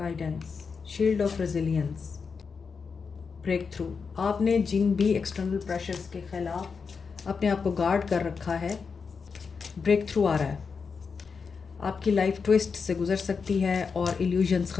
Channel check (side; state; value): right; quieter; 5.4 dB